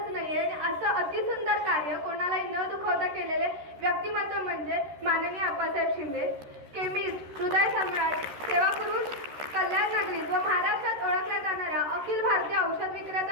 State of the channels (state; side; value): late; left; 13 ms